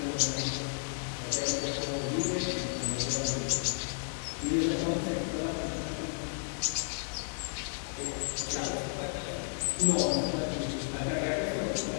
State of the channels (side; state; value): right; silent; digital silence